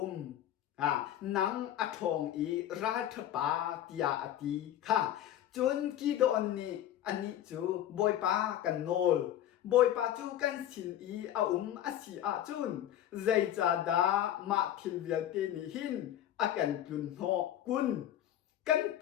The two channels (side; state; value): right; quieter; 11.7 dB